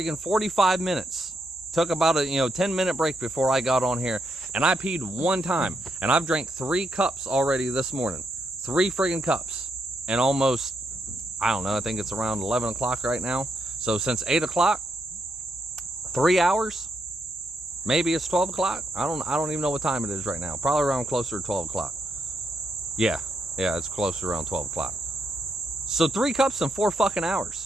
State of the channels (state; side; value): normal; both; correlation 0.79